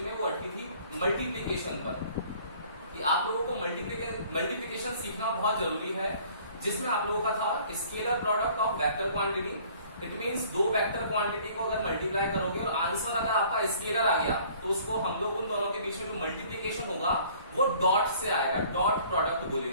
में, वो अटकी थी मल्टीप्लिकेशन पर, कि आप लोगों को मल्टीप्लिकेशन सीखना बहुत जरूरी है। जिसमें आप लोगों का था scalar product of vector quantity, it means दो वेक्टर क्वांटिटी को अगर मल्टीप्लाई करोगे और आंसर अगर आपका स्केलर आ गया तो उसको हम लोग उन दोनों के बीच में जो मल्टीप्लीकेशन होगा वो डॉट से आएगा, डॉट प्रोडक्ट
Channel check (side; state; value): both; inverted; correlation -0.54